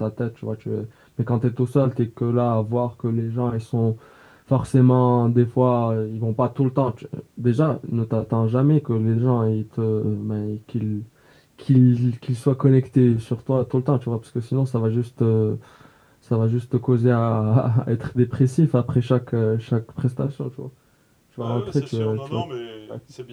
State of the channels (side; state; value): both; identical; correlation 1.00